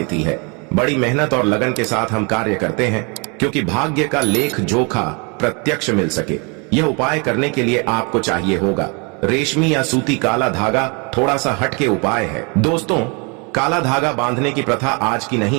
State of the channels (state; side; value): quieter; left; 32.7 dB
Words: है। बड़ी मेहनत और लगन के साथ हम कार्य करते हैं क्योंकि भाग्य का लेख जोखा प्रत्यक्ष मिल सके। यह उपाय करने के लिए आपको चाहिए होगा रेशमी या सूती काला धागा। थोड़ा सा हटके उपाय है। दोस्तों, काला धागा बांधने की प्रथा आज की